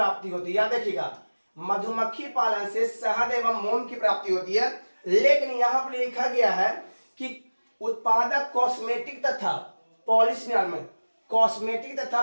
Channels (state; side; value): inverted; both; correlation -1.00